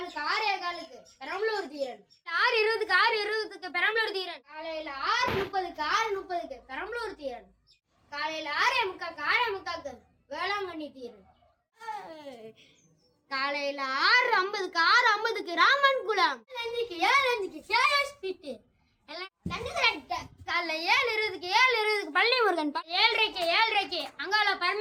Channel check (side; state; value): both; identical; correlation 1.00